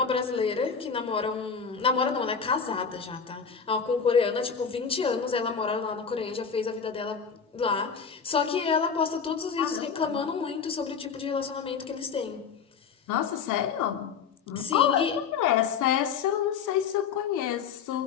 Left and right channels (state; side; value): quieter; right; 6.3 dB